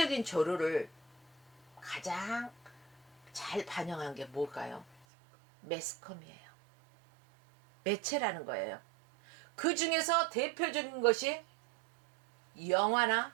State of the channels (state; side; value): drops out; left; at 5.1 s